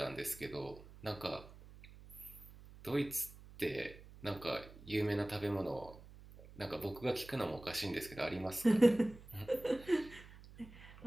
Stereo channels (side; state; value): right; noise; hum, 18 dB below the sound